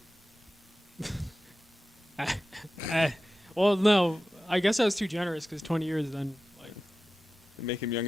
well, no, I guess I was too generous because 20 years then like They make him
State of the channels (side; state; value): both; normal; correlation 0.94